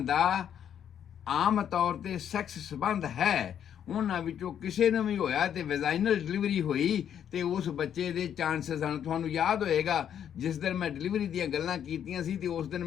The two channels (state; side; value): quieter; right; 9.2 dB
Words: ਦਾ ਆਮ ਤੌਰ ਤੇ ਸੈਕਸ ਸੰਬੰਧ ਹੈ, ਉਹਨਾਂ ਵਿੱਚੋਂ ਕਿਸੇ ਨੂੰ ਵੀ ਹੋਇਆ ਤੇ ਵੈਜਾਈਨਲ ਡਿਲੀਵਰੀ ਹੋਈ ਤੇ ਉਸ ਬੱਚੇ ਦੇ ਚਾਂਸਸ ਹਨ। ਤੁਹਾਨੂੰ ਯਾਦ ਹੋਏਗਾ ਜਿਸ ਦਿਨ ਮੈਂ ਡਿਲੀਵਰੀ ਦੀਆਂ ਗੱਲਾਂ ਕੀਤੀਆਂ ਸੀ ਤੇ ਉਸ ਦਿਨ